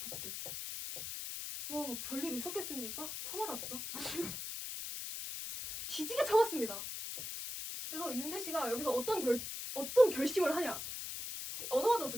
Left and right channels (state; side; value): noise; left; hiss, 6 dB below the sound